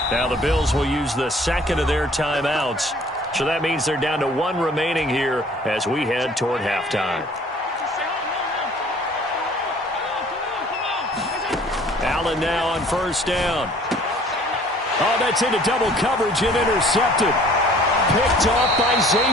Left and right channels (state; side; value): normal; both; correlation 0.53